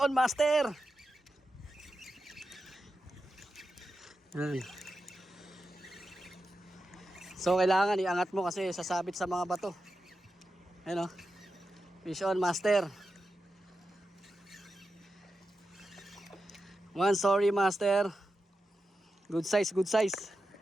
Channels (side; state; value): both; normal; correlation 0.90